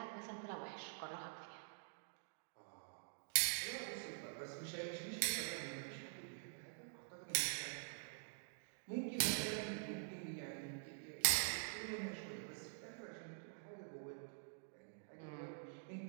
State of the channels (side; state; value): left; silent; digital silence